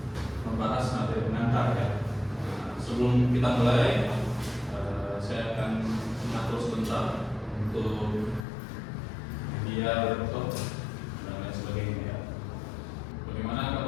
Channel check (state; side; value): drops out; right; at 8.5 s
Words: membahas materi pengantar ya. Sebelum kita mulai, saya akan mengatur sebentar untuk media laptop dan lain sebagainya ya. Bagaimana